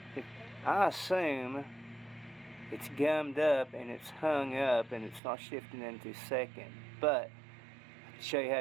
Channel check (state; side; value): drops out; left; at 5.2 s